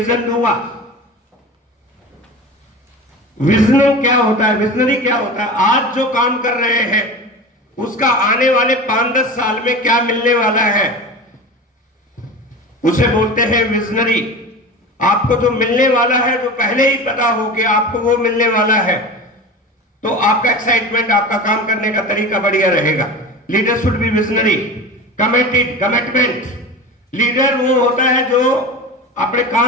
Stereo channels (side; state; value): both; normal; correlation 0.31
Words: दूंगा। विजन क्या होता है, विजनरी क्या होता है? आज जो काम कर रहे हैं उसका आने वाले 5-10 साल में क्या मिलने वाला है, उसे बोलते हैं विजनरी। आपको जो मिलने वाला है, जो पहले ही पता हो कि आपको वो मिलने वाला है, तो आपका एक्साइटमेंट, आपका काम करने का तरीका बढ़िया रहेगा। Leader should be visionary. Committed, commitment. Leader वो होता है जो अपने